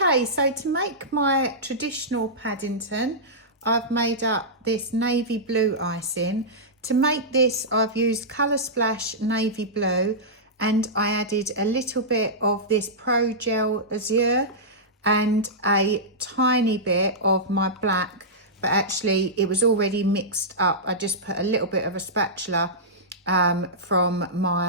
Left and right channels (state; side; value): normal; both; correlation -0.13